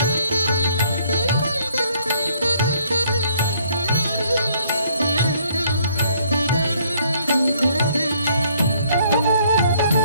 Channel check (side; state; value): both; inverted; correlation -0.64